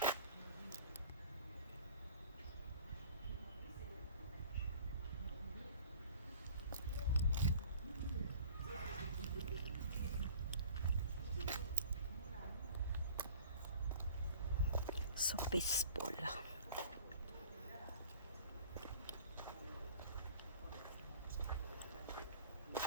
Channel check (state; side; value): inverted; both; correlation -0.47